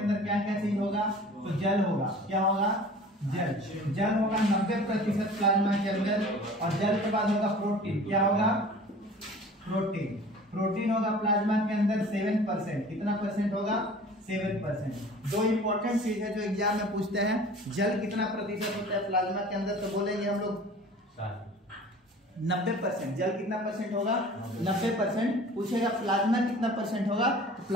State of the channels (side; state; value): both; normal; correlation 0.44